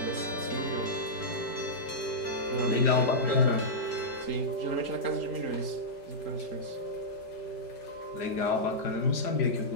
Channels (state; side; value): late; right; 5.0 ms